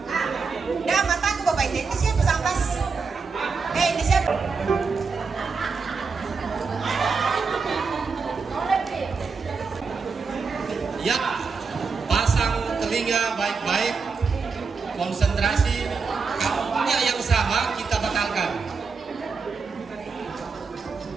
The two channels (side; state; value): left; quieter; 5.0 dB